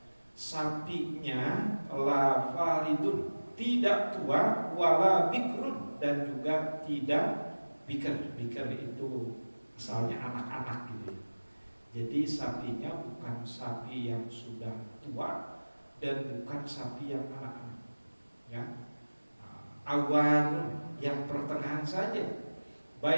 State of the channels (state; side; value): inverted; both; correlation -1.00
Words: Sapinya la faridun, tidak tua, wala bikrun, dan juga tidak bikar. Bikar itu asalnya anak-anak gitu ya. Jadi sapinya bukan sapi yang sudah tua dan bukan sapi yang anak-anak, ya. Awan yang pertengahan saja,